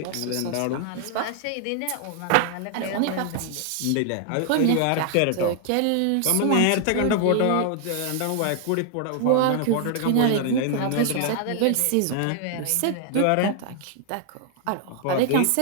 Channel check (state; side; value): different; both; correlation 0.00